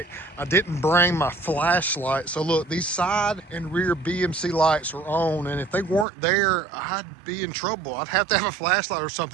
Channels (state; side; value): drops out; left; at 6.1 s